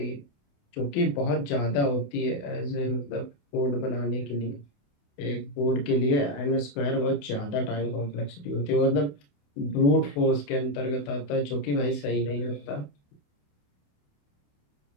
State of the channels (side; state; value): right; late; 28 ms